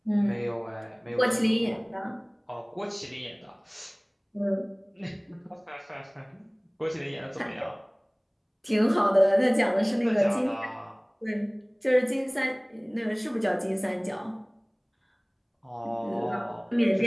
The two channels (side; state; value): both; identical; correlation 1.00